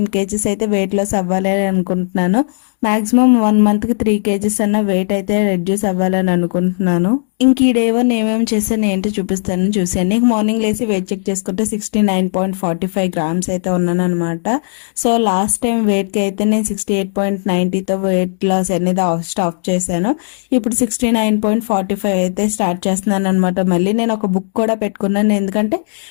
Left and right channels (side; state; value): right; silent; digital silence